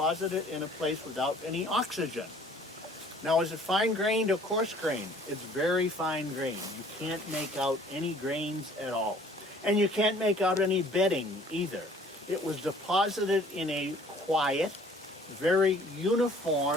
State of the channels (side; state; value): both; normal; correlation 0.54